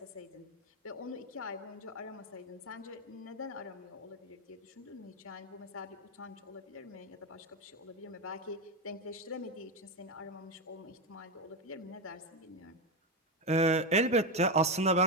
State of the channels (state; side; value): normal; both; correlation 0.12